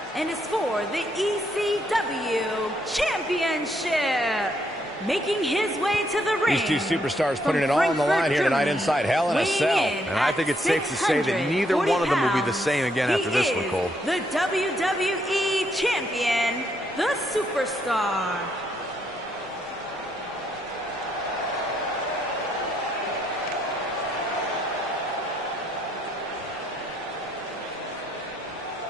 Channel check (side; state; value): right; noise; rumble, 29 dB below the sound